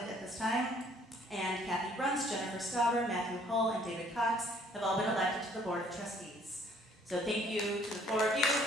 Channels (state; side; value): normal; both; correlation 0.60